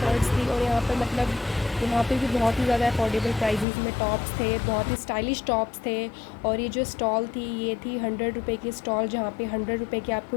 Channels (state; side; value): drops out; right; at 3.7 s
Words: थी। और यहाँ पर मतलब यहाँ पे भी बहुत ही ज़्यादा अफोर्डेबल प्राइसेस में टॉप्स थे, बहुत ही स्टाइलिश टॉप्स थे। और ये जो स्टॉल थी ये थी 100 रुपये की स्टॉल, जहाँ पे 100 रुपये की आपको